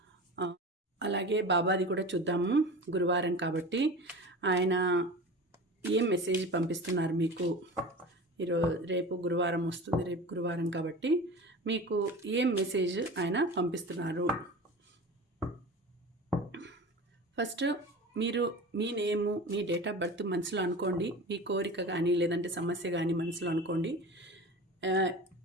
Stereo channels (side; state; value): both; normal; correlation 0.33